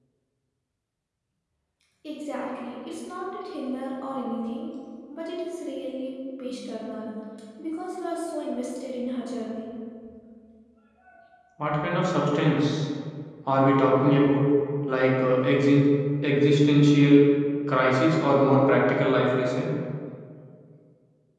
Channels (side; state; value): both; identical; correlation 1.00